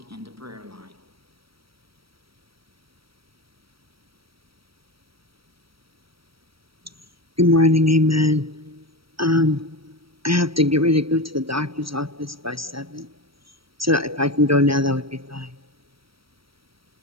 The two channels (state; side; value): late; left; 0.75 ms